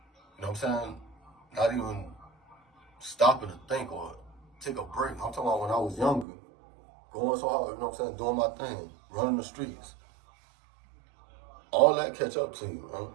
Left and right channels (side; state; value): left; drops out; at 6.2 s